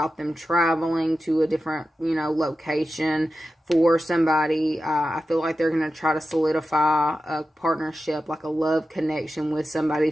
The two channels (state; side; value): normal; both; correlation 0.92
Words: them traveling to a different, you know, location. For somebody, I feel like they're going to try to solidify a partnership, like a love connection with somebody